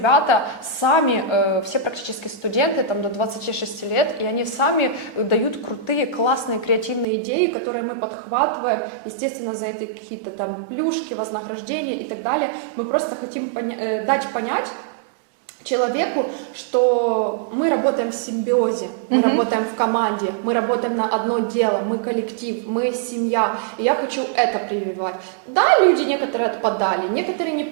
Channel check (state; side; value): drops out; left; at 7.1 s